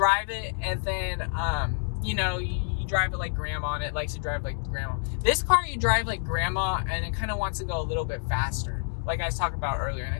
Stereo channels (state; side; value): silent; right; digital silence